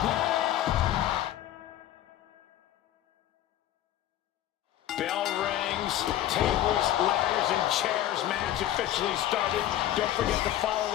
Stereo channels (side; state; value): right; quieter; 12.8 dB